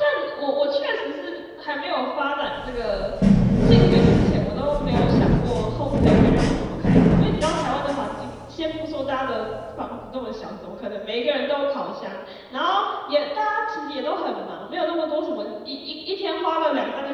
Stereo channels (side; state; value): both; identical; correlation 1.00